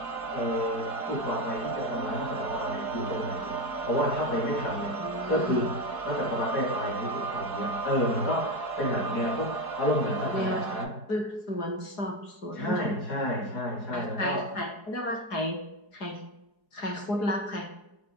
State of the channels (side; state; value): right; late; 4.7 ms